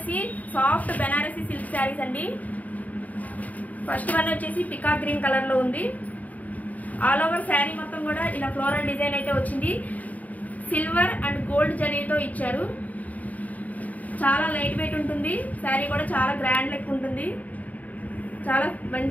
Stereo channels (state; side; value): late; right; 0.074 ms